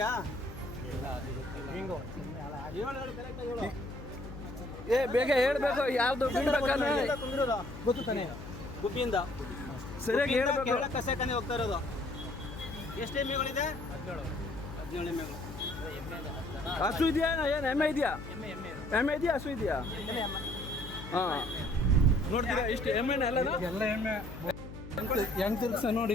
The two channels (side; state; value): left; noise; hum, 12 dB below the sound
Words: ಏ ಬೇಗ ಹೇಳ್ಬೇಕು ಯಾವ್ದು ಗೊತ್ತು ತಾನೆ ಗುಬ್ಬಿಯಿಂದ ಸರಿಯಾಗಿ ಹೇಳ್ಬೇಕು. ಕಸ ಕನಿ ಹೋಗ್ತಾ ಇರೋದು. ಎಷ್ಟು ಎಮ್ಮೆಗಳಿದೆ? 17 ಎಮ್ಮೆಗಳು. ಹಸು ಇದೆಯಾ ಏನು ಎಮ್ಮೆ ಇದೆಯಾ? ಎಮ್ಮೆ ಇದೆಯಾ ಹಸು ಇದೆಯಾ? ಹಾಂ ನೋಡ್ತೀರಾ ಇಷ್ಟು ಎಮ್ಮೆನ ಎಲ್ಲ ಎಮ್ಮೆ ಹೆಂಗ್ ತಿರ್ಗ್ಸ